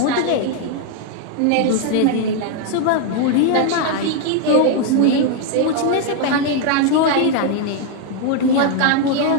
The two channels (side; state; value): both; different; correlation 0.01